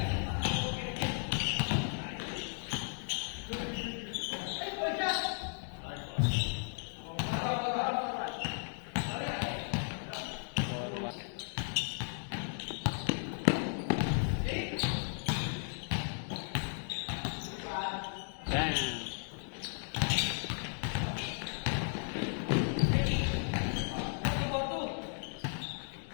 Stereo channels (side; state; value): right; silent; 54 dB below the other